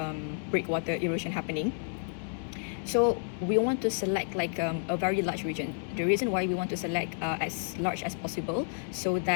breakwater erosion happening. So we want to select like a very large region. The reason why we want to select as large as possible, so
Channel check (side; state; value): right; silent; 57 dB below the other